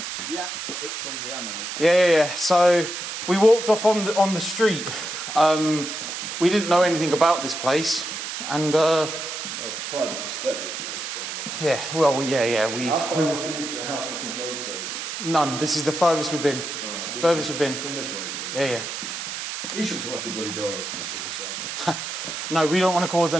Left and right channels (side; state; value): right; noise; hiss, 6 dB below the sound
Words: Yeah, it's Sunday, I know. Yeah. So we walked off on the street. We didn't know anything about this place, and Oh, it's a private estate. yeah. Well, yeah. How far is the house looking photo? None. This is the furthest we've been. Right, Furthest we've been. Come this way. Yeah. You shouldn't have left the bloody door open just yourself. No, we don't want to cause